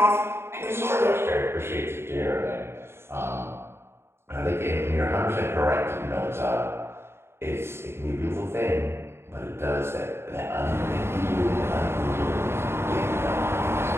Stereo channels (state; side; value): late; left; 0.12 ms